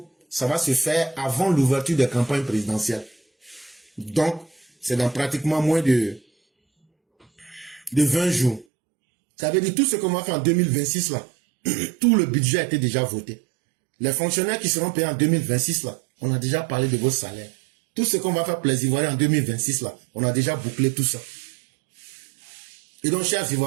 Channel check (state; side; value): drops out; left; at 8.7 s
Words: ça va se faire avant l'ouverture des campagnes présidentielles. Donc, c'est dans pratiquement moins de 20 jours. Ça veut dire tout ce qu'on va faire en 2026 là, tout le budget a été déjà voté. Les fonctionnaires qui seront payés en 2026 là, on a déjà parlé de vos salaires. Tout ce qu'on va faire pour les Ivoiriens en 2026 là, on a déjà bouclé tout ça. Et donc, chers